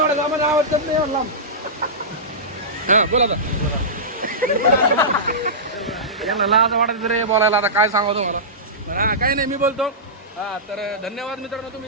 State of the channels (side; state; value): both; normal; correlation -0.17